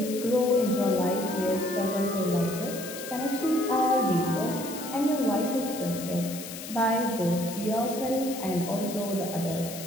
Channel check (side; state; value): left; noise; hiss, 11 dB below the sound